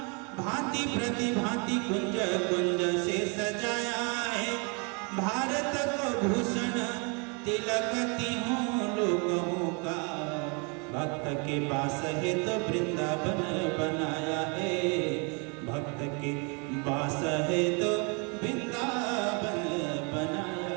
भांति प्रतिभांति कुंज कुंज से सजाया है। भारत को भूषण तिलक तीहों लोगों का, भक्त के पास है तो वृंदावन बनाया है। भक्त के पास है तो वृंदावन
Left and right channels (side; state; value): left; quieter; 34.1 dB